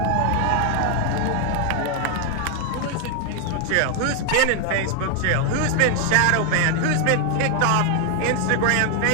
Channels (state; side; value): different; both; correlation 0.01